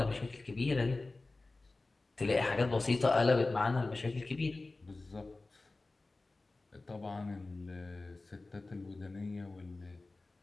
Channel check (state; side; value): quieter; right; 3.3 dB